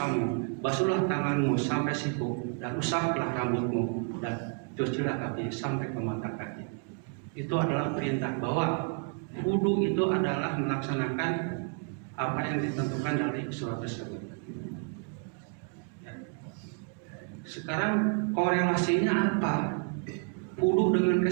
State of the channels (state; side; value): quieter; left; 35.8 dB